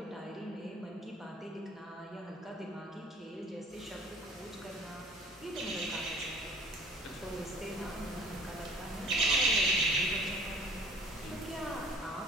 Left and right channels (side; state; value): both; normal; correlation 0.50